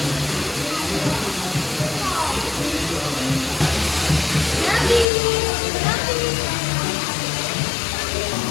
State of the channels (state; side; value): drops out; right; at 5.1 s